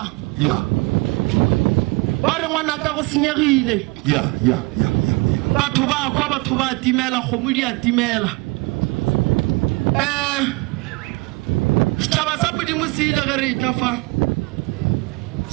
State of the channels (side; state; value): left; quieter; 25.5 dB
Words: Yeah. ba re ngwana ka go senyegile Yeah. batho ba kwa batho ba timela khomo di a timela Staba sa modimo se ile ge re tla fa